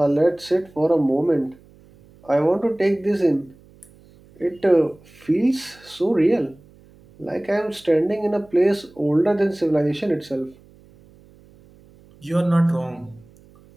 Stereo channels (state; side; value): noise; right; hum, 27 dB below the sound